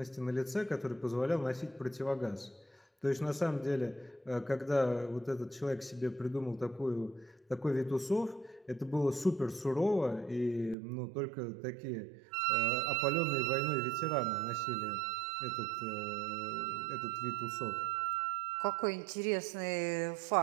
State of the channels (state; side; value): drops out; left; at 10.8 s